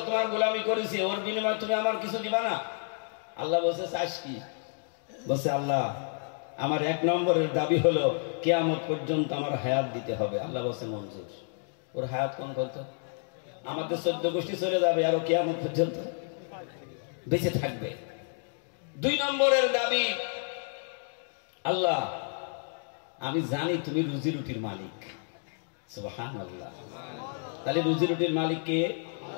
তোমার গোলামি করেছি, ওর বিনিময়ে তুমি আমার কিছু দিবা না? আল্লাহ বলছে, চাস কি? বলছে, আল্লাহ আমার 1 নম্বরের দাবি হলো কিয়ামত পর্যন্ত আমার হায়াত দিতে হবে। আল্লাহ বলছে, মঞ্জুর। ওর হায়াত কোন কত? আমাদের 14 গোষ্ঠী চলে যাবে, আর কিয়ামত পর্যন্ত বেঁচে থাকবে। 2 নম্বরের দাবি, আল্লাহ আমি জানি তুমি রুজি রুটির মালিক। সুবহানাল্লাহ। তাহলে রুজি রুটির মালিক কে?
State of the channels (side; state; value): right; silent; 56 dB below the other